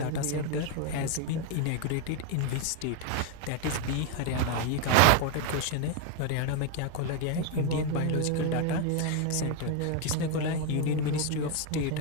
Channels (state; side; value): different; both; correlation 0.01